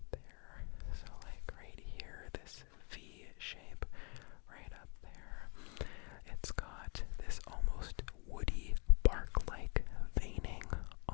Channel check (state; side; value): quieter; right; 33.9 dB